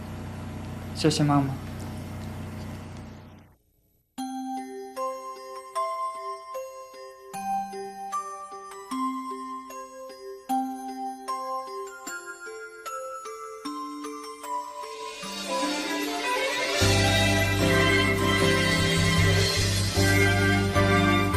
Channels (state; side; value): identical; both; correlation 1.00